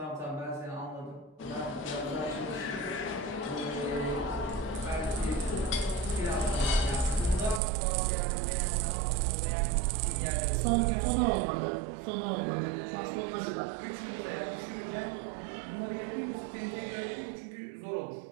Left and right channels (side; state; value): left; drops out; at 7.6 s